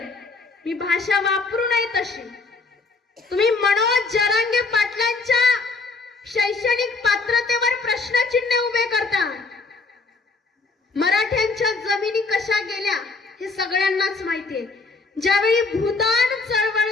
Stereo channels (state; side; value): quieter; right; 3.9 dB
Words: मी भाषा वापरू नये तशी. तुम्ही मनोज जरांगे पाटलांच्या शैक्षणिक पात्रतेवर प्रश्नचिन्ह उभे करता. मराठ्यांच्या जमिनी कशा गेल्या हे सगळ्यांनाच माहितीये. ज्यावेळी भूदान